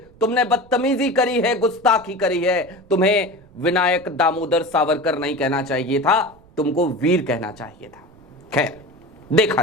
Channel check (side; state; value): right; noise; rumble, 26 dB below the sound